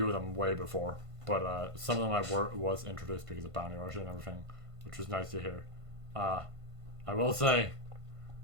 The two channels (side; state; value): left; late; 1.5 ms